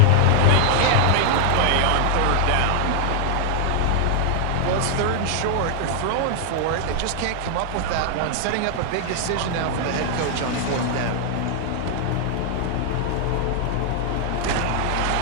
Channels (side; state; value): both; different; correlation 0.00